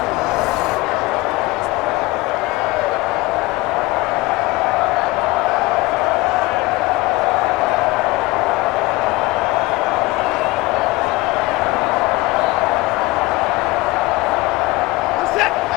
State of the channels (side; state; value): right; quieter; 21.0 dB